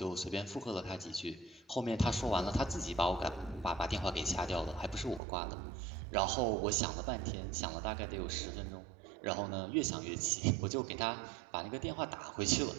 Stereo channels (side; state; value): left; drops out; at 5.2 s